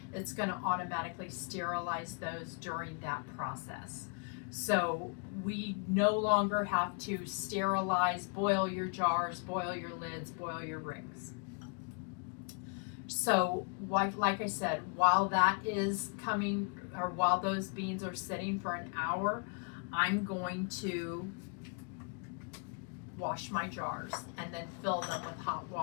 it's going to automatically sterilize those during that process. So we no longer have to sterilize, boil your jars, boil your lids, boil your rings. So like I said, while that is coming, or while those beans are sitting for an hour, I'm going to wash my jars and then fill them with hot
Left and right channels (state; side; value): quieter; right; 39.5 dB